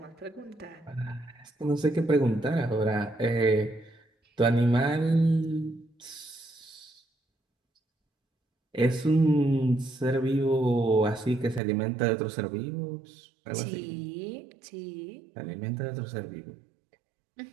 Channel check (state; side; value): drops out; left; at 11.6 s